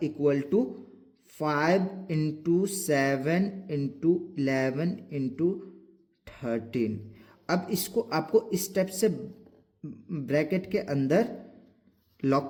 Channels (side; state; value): both; identical; correlation 1.00